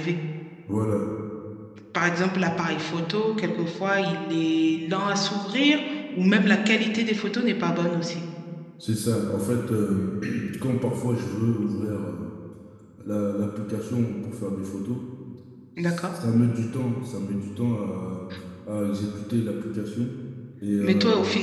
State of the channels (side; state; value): both; identical; correlation 1.00